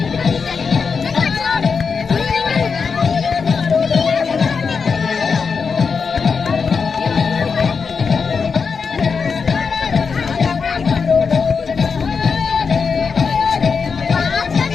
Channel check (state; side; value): quieter; right; 5.5 dB